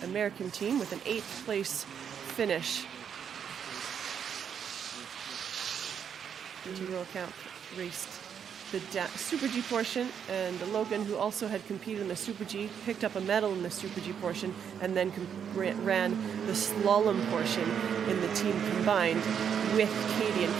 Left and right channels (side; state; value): left; quieter; 7.9 dB